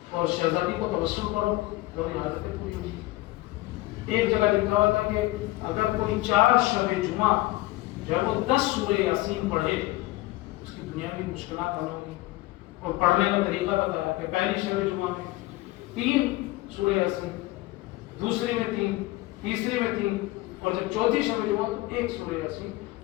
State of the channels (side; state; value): right; quieter; 19.1 dB